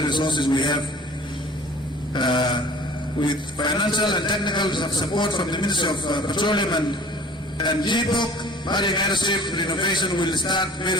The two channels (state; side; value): normal; both; correlation 0.47